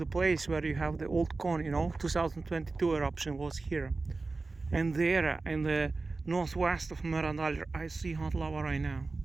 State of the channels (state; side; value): quieter; left; 3.7 dB